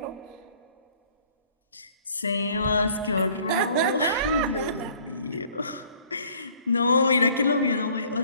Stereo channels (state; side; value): inverted; both; correlation -0.56